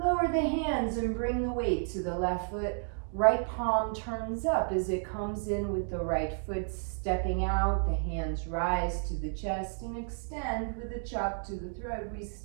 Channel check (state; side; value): silent; left; digital silence